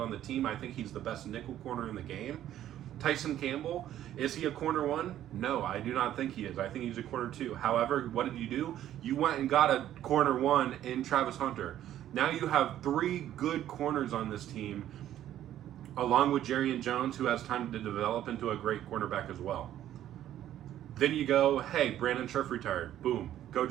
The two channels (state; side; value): quieter; left; 12.0 dB